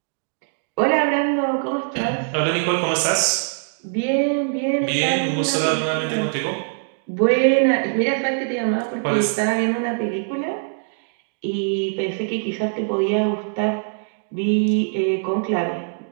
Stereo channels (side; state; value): left; silent; digital silence